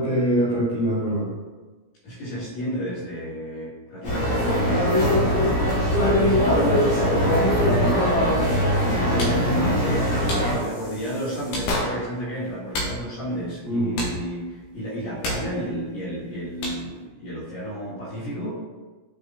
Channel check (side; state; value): right; late; 17 ms